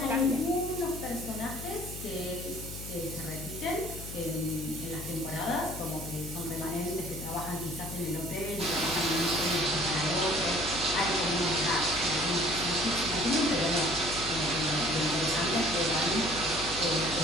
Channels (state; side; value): noise; left; hum, 10 dB below the sound